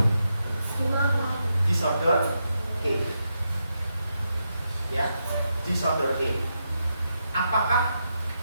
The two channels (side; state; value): both; inverted; correlation -0.84